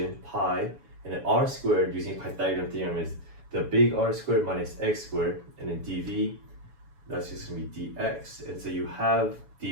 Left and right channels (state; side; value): late; left; 7.1 ms